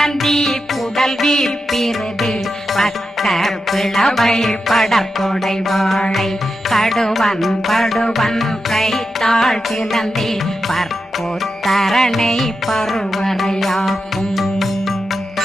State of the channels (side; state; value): both; normal; correlation 0.89